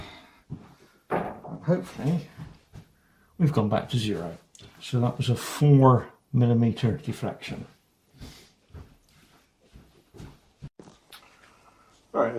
And hopefully we've gone back to 0. So that was a 4mm deflection. Right,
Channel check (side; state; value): both; identical; correlation 1.00